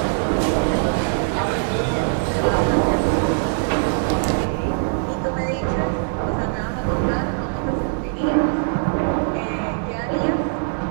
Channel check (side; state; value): left; silent; digital silence